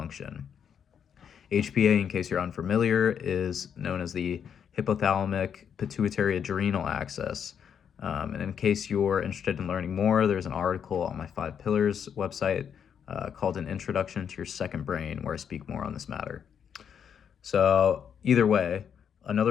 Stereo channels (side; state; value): right; quieter; 7.9 dB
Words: HPA, in case you're unfamiliar, is known as the hypothalamic pituitary adrenal axis. And in case you're interested in learning more, there's an article on my 5 Pillars website called An Introduction to Your Second Brain, where I speak more on this matter. So either way,